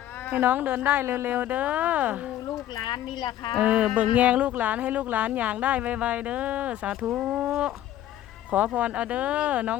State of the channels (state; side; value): quieter; right; 12.6 dB